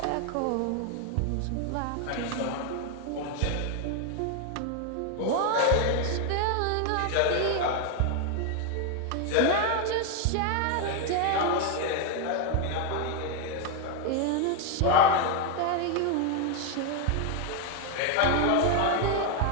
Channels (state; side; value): different; both; correlation 0.01